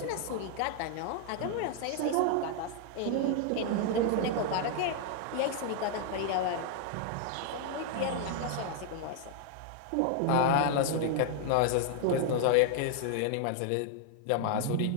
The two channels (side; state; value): both; different; correlation 0.00